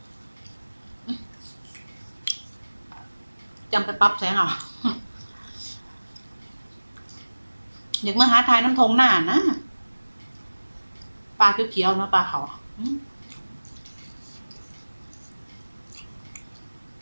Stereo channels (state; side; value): inverted; both; correlation -1.00